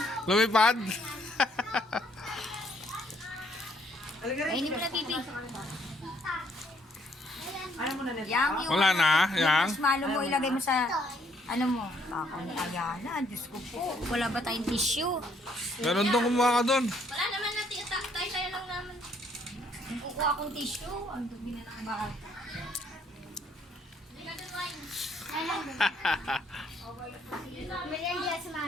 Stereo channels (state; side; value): normal; both; correlation 0.67